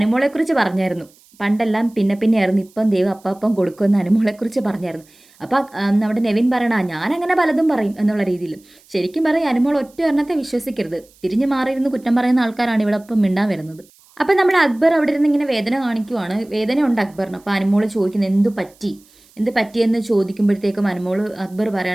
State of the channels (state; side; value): noise; right; hiss, 29 dB below the sound